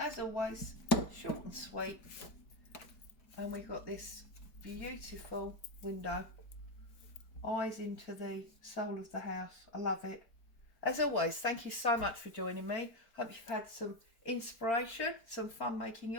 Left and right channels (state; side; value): late; right; 4.4 ms